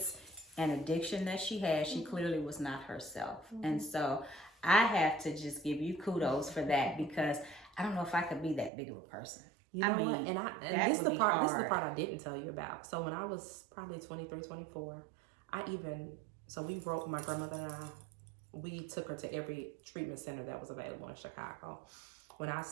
an addiction that she had. She clearly was not herself. And so I have to just give you kudos for that, because I don't know if I could be that big of a person. You know what? And this is the part I didn't tell you about. So when I was probably 23, 24, my grandmother and I, we took her to every treatment center that was available in Chicago. When I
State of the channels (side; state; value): left; drops out; at 8.7 s